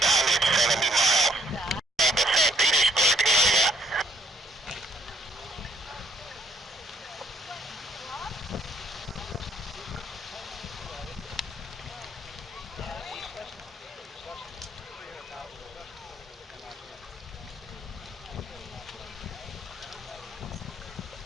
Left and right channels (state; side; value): normal; both; correlation 0.66